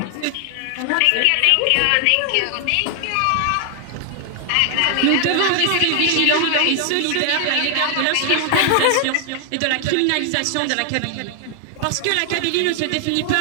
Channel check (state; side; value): different; both; correlation 0.00